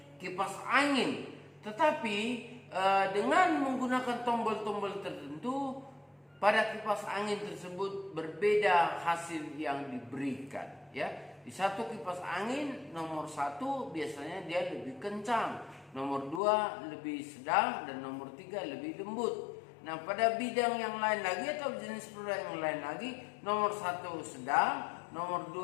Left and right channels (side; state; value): right; drops out; at 16.4 s